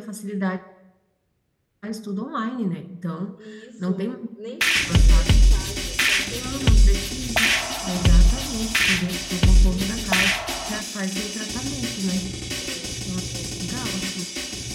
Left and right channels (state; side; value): identical; both; correlation 1.00